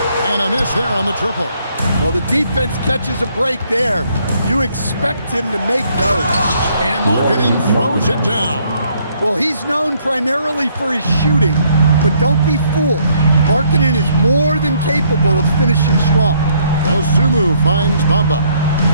And a miss there on the triple. Well, the defense catches a break there. You expect him to make those. And Markkanen throws it down. Well, he's known primarily for his shooting, but don't be fooled. Markkanen is more than capable of finishing strong. Dosunmu finds Bamba.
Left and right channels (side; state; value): both; inverted; correlation -0.68